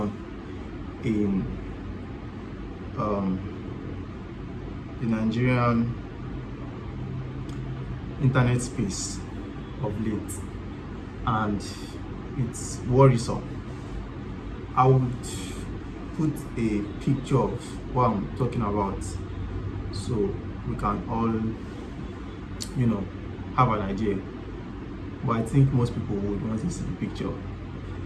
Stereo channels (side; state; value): both; identical; correlation 1.00